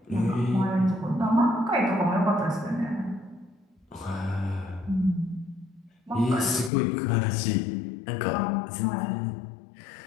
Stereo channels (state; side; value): drops out; right; at 6.7 s